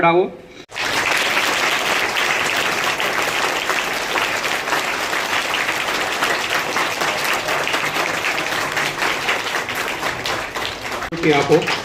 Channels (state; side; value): identical; both; correlation 1.00